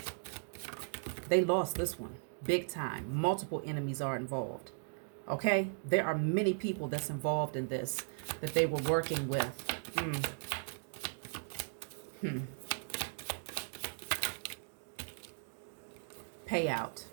They lost this one big time. Multiple enemies are involved. Okay? There are many people that's involved in this that they were working with. Payout.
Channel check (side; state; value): left; silent; digital silence